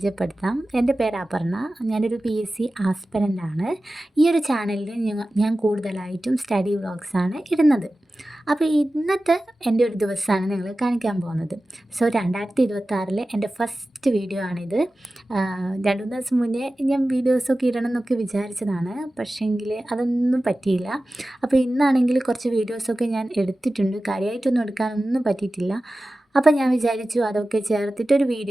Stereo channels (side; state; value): both; normal; correlation 0.95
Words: എൻ്റെ പേര് അപർണ. ഞാനൊരു PSC ആസ്പിരൻ്റ് ആണ്. ഈ ഒരു ചാനലിൽ ഞാൻ കൂടുതലായിട്ടും സ്റ്റഡി വ്ളോഗ്സാണ് ഇടുന്നത്. അപ്പോൾ ഇന്നത്തെ എൻ്റെ ഒരു ദിവസമാണ് നിങ്ങൾ കാണിക്കാൻ പോകുന്നത്. സോ 2026 എൻ്റെ ഫസ്റ്റ് വീഡിയോ ആണിത്. 2-3 ദിവസം മുന്നേ ഞാൻ വീഡിയോസൊക്കെ ഇടണം എന്നൊക്കെ വിചാരിച്ചതാണ്, പക്ഷേങ്കിൽ അതൊന്നും പറ്റിയില്ല. അപ്പോൾ ഇന്നാണെങ്കിൽ കുറച്ച് വീഡിയോസൊക്കെ ഞാൻ എടുത്തിട്ടുണ്ട്, കാര്യമായിട്ടൊന്നും എടുക്കാനൊന്നും പറ്റിയിട്ടില്ല. അപ്പോൾ ഞാൻ വിചാരിച്ചു അതൊക്കെ ചേർത്തിട്ടൊരു